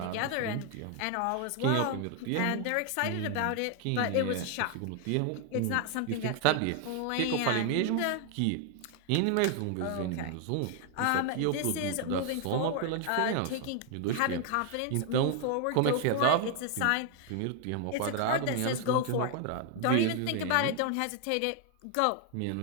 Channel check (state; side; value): different; both; correlation 0.00